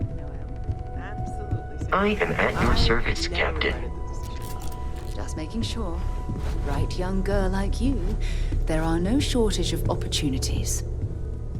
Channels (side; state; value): both; identical; correlation 1.00